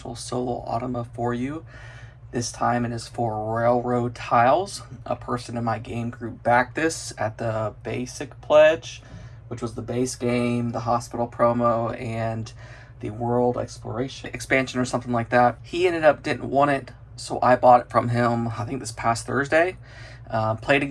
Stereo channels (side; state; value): both; identical; correlation 1.00